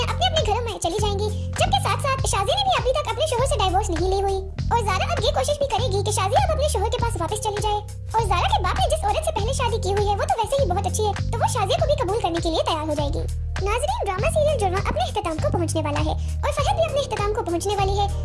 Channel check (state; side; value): identical; both; correlation 1.00